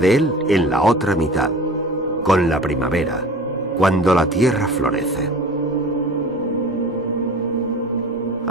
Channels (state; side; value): normal; both; correlation 0.40